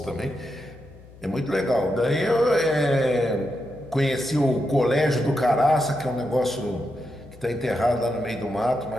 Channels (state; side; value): noise; left; hum, 21 dB below the sound